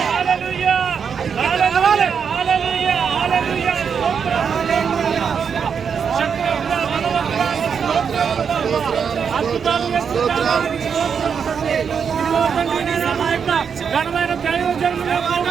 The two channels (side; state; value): left; quieter; 6.8 dB